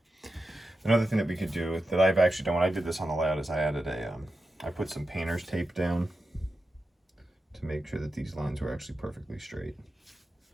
Another thing that we could do that I've actually done when I did this on the layout is I added I put some painter's tape down to make sure that these lines were actually perfectly straight.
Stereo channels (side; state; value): both; normal; correlation 0.90